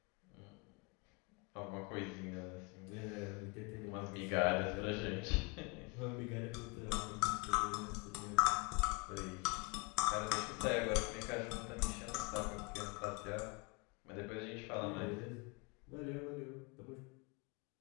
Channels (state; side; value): quieter; right; 29.5 dB